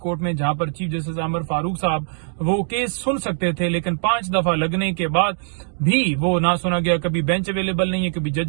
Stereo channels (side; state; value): left; silent; 65 dB below the other